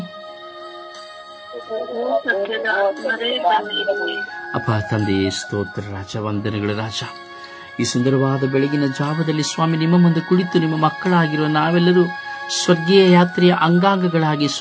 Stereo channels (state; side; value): identical; both; correlation 1.00